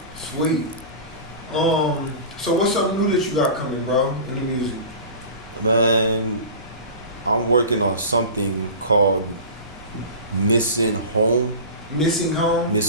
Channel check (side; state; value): both; inverted; correlation -0.33